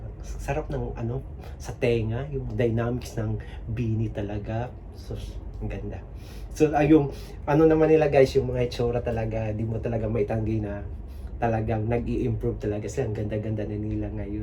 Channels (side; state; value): both; identical; correlation 1.00